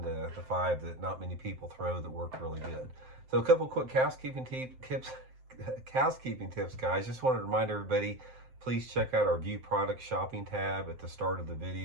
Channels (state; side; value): late; left; 7.7 ms